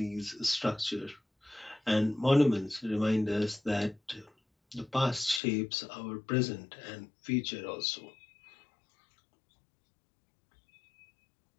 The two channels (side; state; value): right; drops out; at 5.4 s